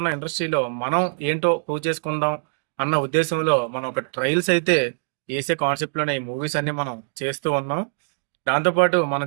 ఉన్న ఇండస్ట్రీలో మనం ఏంటో ప్రూవ్ చేసుకుందాం అన్న ఉద్దేశంలో మనం ఒక ట్రయల్స్ అయితే వేసే కాన్సెప్ట్లోనే ఈ మూవీస్ అన్ని మనం చేస్తూ ఉన్నాం. దాంతోపాటు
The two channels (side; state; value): left; silent; digital silence